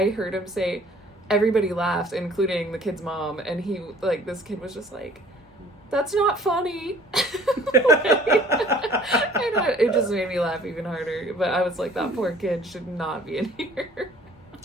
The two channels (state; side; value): normal; both; correlation 0.54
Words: heard him say, everybody laughed, including the kid's mom, and this kid was just like, that's not funny. It just made me laugh even harder. But I was like, that poor kid should not be in here.